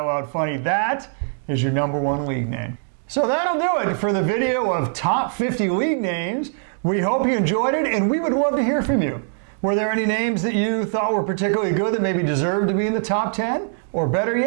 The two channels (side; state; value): left; silent; digital silence